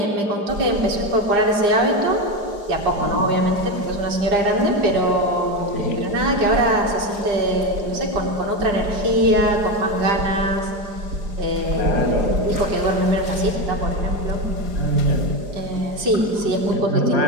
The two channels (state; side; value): late; left; 4.9 ms